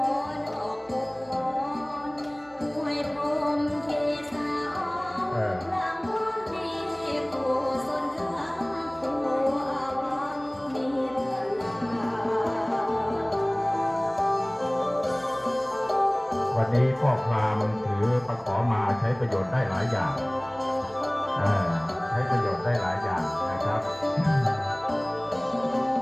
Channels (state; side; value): noise; right; hum, 27 dB below the sound